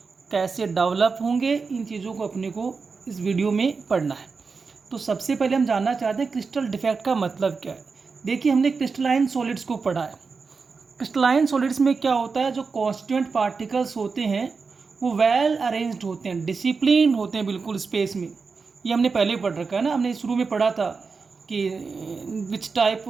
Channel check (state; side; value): quieter; left; 4.8 dB